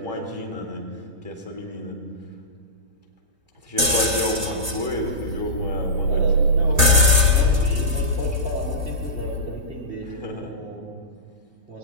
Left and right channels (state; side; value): late; left; 2.9 ms